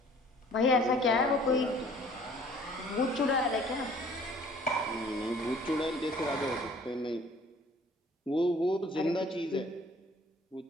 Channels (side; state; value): both; normal; correlation 0.54